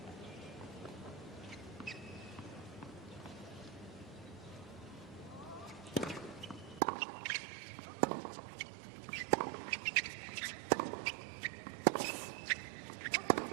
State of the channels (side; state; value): left; drops out; at 6.8 s